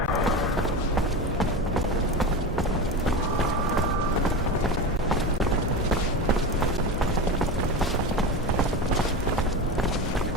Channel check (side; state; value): both; normal; correlation 0.24